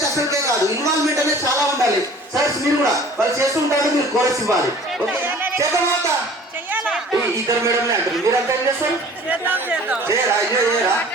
అసలుకే కాదు. ఇన్వాల్వ్మెంట్ అనేది చాలా ఉండాలి. సార్ మీరు కూడా వాళ్ళు చేస్తూ ఉంటారు, మీరు కోరస్ ఇవ్వాలి. ఓకే చేద్దామా? ఇద్దరు మేడంలే అంటారు, మీరంతా ఏం చేస్తారు? చేయరా? అయ్యో చేయరా?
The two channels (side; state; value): both; normal; correlation 0.48